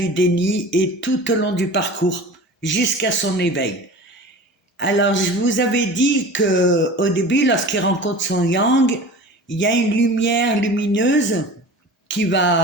déni et tout au long du parcours, jusqu'à son éveil. Alors je vous avais dit que au début, lorsqu'il rencontre son yang, il y a une lumière lumineuse qui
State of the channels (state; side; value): normal; both; correlation 0.38